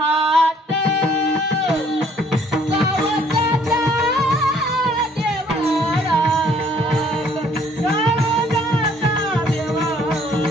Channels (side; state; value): both; normal; correlation 0.61